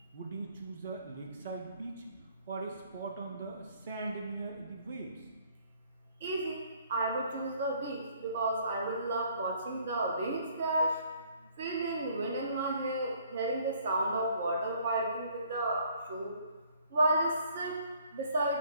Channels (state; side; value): inverted; both; correlation -0.61